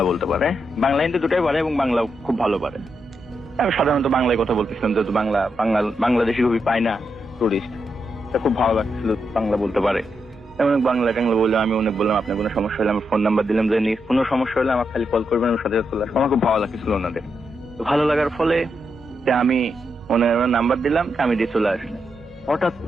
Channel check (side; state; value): both; normal; correlation 0.83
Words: বলতে পারে, বাংলা হিন্দি দুটাই পারে এবং বাংলা খুব ভালো পারে। আমি সাধারণত বাংলায় কথা বলতেছিলাম, যেহেতু বাংলাদেশি খুবই পাই না টুরিস্ট, তা খুব ভালো লাগছিল বাংলা বলতে পারে। অনেক বাংলা টাংলা বললাম, আমি অনেক বললাম আপনার কোনো সমস্যা হলে, আমি ফোন নাম্বার দিলাম যে কোনো সমস্যা হলে আমার খালি কল করবেন, আমি সাথে চলে আসবো। আমার খুব ভালো লাগছিল ওনাদের। ভালো লাগার ফলে আমি ওনার নাম্বার দিলাম, আমি দিয়ে চলে আসলাম। হঠাৎ